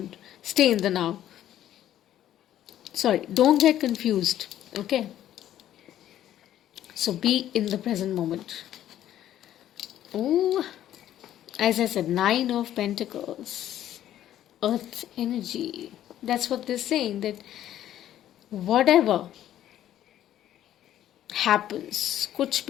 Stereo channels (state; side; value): quieter; right; 11.9 dB